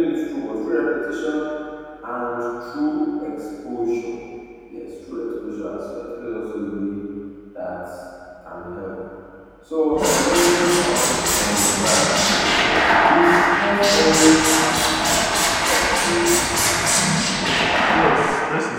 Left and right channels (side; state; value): both; identical; correlation 1.00